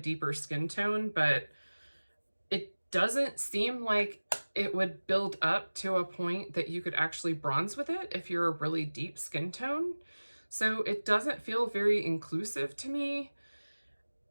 skin tone, but it doesn't seem like it would build up to a point that you could actually bronze with it if you're a really deep skin tone. So it doesn't feel very inclusive to me.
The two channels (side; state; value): both; inverted; correlation -1.00